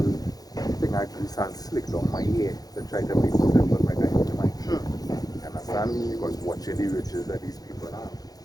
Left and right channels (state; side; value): late; right; 0.18 ms